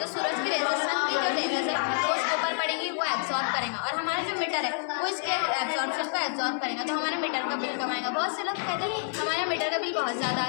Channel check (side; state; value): right; silent; 59 dB below the other